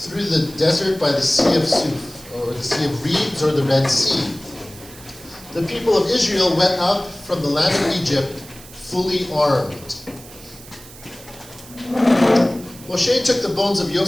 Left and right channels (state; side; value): noise; right; hiss, 19 dB below the sound